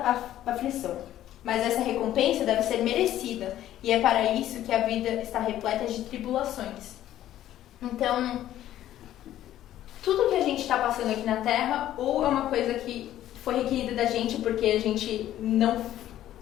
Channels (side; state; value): right; quieter; 12.7 dB